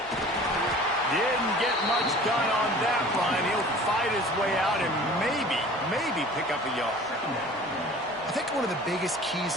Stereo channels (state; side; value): normal; both; correlation 0.45